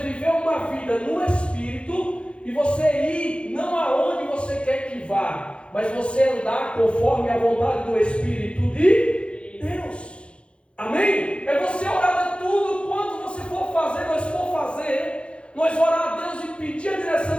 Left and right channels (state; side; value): late; right; 0.058 ms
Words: uma vida no Espírito e você ir não aonde você quer que vá, mas você andar conforme a vontade do Espírito de Deus. Amém? É você orar de tudo quanto você for fazer, nós orar a Deus e pedir a direção